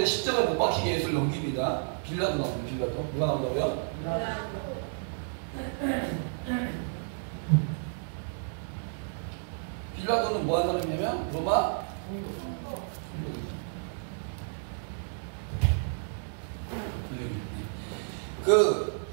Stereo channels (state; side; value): silent; left; digital silence